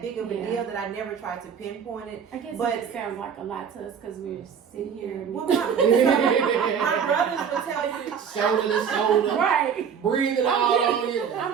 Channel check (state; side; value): quieter; left; 7.2 dB